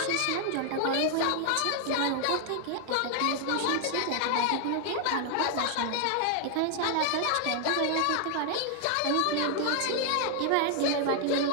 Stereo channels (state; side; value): different; both; correlation 0.00